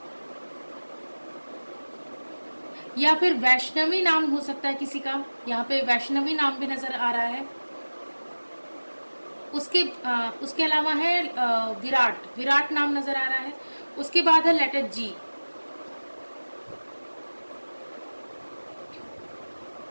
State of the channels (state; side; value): inverted; both; correlation -1.00